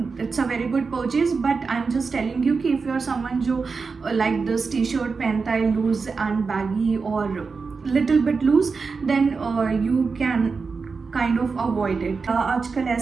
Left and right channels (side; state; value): left; quieter; 4.8 dB